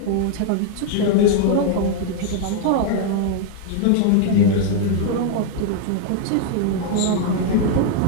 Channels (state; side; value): different; both; correlation 0.00